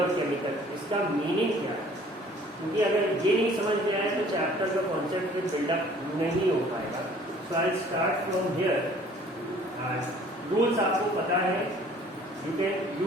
और केमिकल, इसका मीनिंग क्या है? क्योंकि अगर ये नहीं समझ में आए तो चैप्टर का कॉन्सेप्ट फिर बिल्डअप नहीं हो पाएगा. So I start from here. Rules आपको पता है. You can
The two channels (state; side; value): normal; both; correlation 0.54